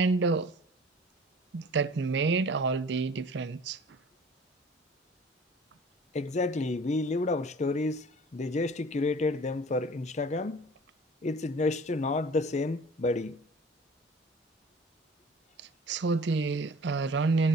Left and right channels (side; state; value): both; normal; correlation 0.46